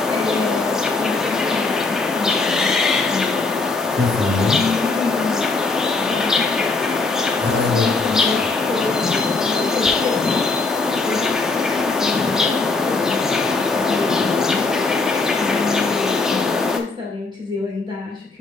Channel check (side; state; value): right; quieter; 3.7 dB